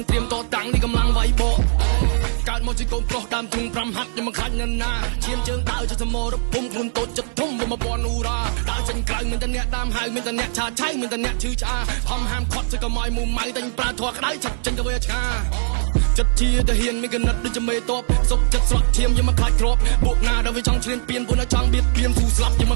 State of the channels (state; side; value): silent; left; digital silence